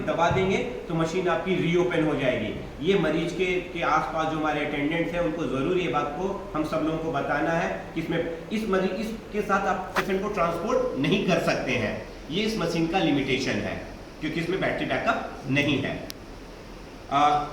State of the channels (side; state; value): both; identical; correlation 1.00